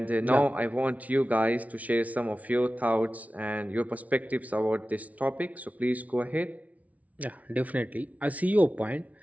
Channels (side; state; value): left; late; 0.070 ms